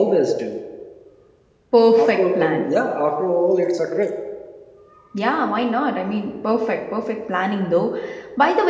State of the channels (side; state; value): both; identical; correlation 1.00